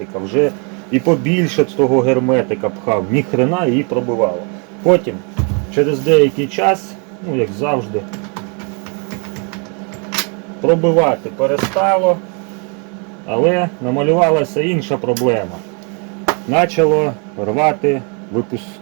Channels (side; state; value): left; quieter; 36.5 dB